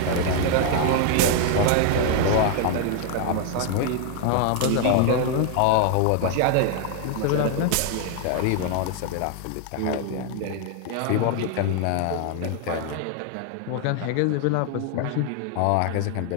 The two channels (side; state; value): both; different; correlation 0.00